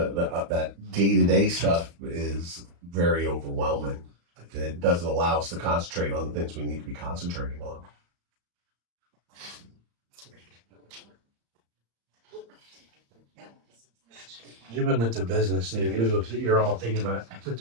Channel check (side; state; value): left; late; 35 ms